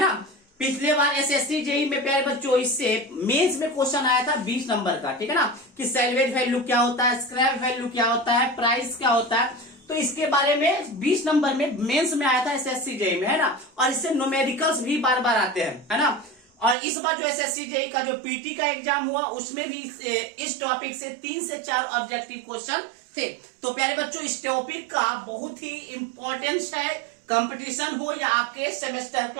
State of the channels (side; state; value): left; drops out; at 16.8 s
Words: पिछले बार एसएससी जेई में प्यारे बच्चों इससे मेंस में क्वेश्चन आया था 20 नंबर का, ठीक है ना, कि सैलवेज वैल्यू क्या होता है, स्क्रैप वैल्यू क्या होता है, प्राइस क्या होता है। तो इसके बारे में 20 नंबर में मेंस में आया था एसएससी जेई में, है ना। और इससे न्यूमेरिकल्स भी बार बार आते हैं, है ना। और इस बार जो एसएससी जेई का जो पीटी का एग्जाम हुआ उसमें भी इस टॉपिक से 3 से 4 ऑब्जेक्टिव क्वेश्चन थे। तो प्यारे बच्चों, इस टॉपिक का बहुत ही इंपॉर्टेंस है, कंपटीशन हो या आपके सेमेस्टर